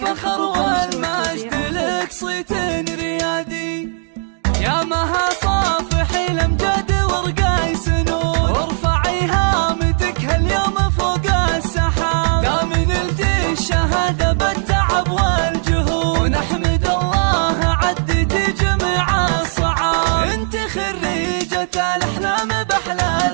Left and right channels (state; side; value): silent; left; digital silence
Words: والمجد لك صيت ريادي، يا مها صافحي الأمجاد ورقاي سنون، وارفعي هامتك هاليوم فوق السحاب، دام نلتي الشهادة بالتعب والجهود، ونحمد الله عديتي جميع الصعاب، انت خريجة الأحلام بأحلى